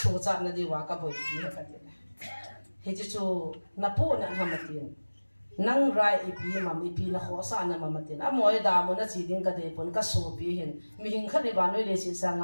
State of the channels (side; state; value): both; inverted; correlation -1.00